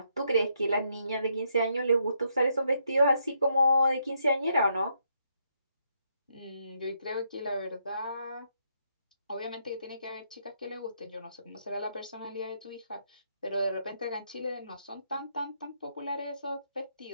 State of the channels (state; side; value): inverted; both; correlation -0.76